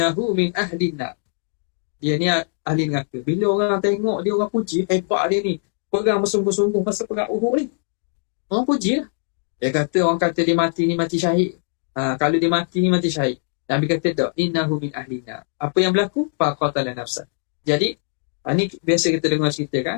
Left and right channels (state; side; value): silent; right; digital silence